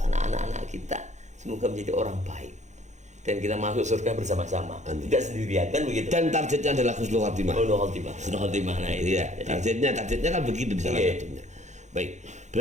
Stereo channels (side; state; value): left; late; 0.34 ms